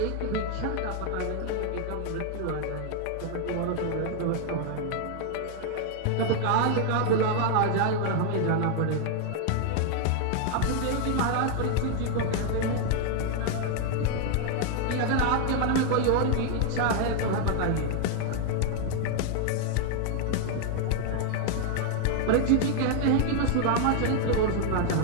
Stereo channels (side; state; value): both; different; correlation 0.00